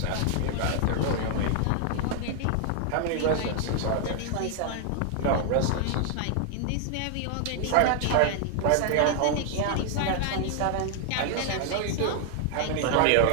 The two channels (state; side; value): different; both; correlation 0.00